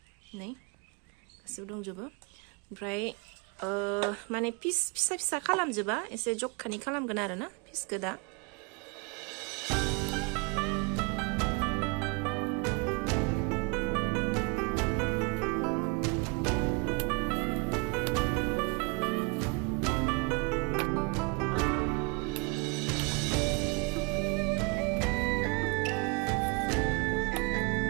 नै गासिबो दंजोबो ओमफ्राय माने पिस फिसा फिसा खालामजोबा एसे जखानि खालामगोन आरोना पिसखौ दा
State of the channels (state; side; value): quieter; left; 29.8 dB